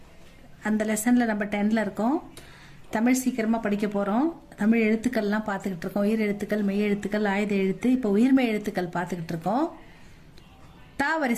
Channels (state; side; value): identical; both; correlation 1.00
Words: அந்த லெசனில் நம்ம 10ல் இருக்கோம். தமிழ் சீக்கிரமாக படிக்க போகிறோம். தமிழ் எழுத்துக்கள்லாம் பார்த்துக்கிட்டு இருக்கோம். உயிர் எழுத்துக்கள், மெய் எழுத்துக்கள், ஆயுத எழுத்து. இப்போ உயிர்மெய் எழுத்துக்கள் பார்த்துக்கிட்டு இருக்கோம். தா